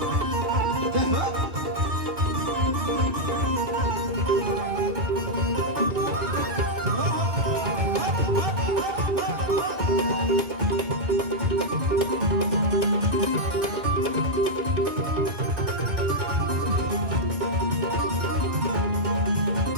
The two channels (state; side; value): late; left; 2.2 ms